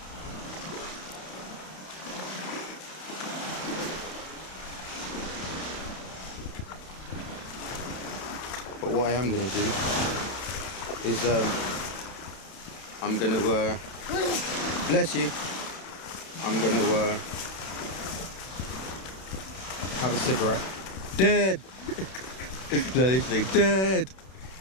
But what I am going to do is I'm going to bless you, I'm going to have a cigarette. Dead. No, literally dead.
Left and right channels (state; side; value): late; right; 31 ms